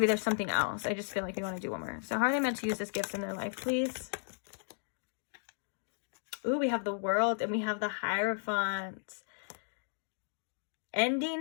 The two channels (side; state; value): right; silent; digital silence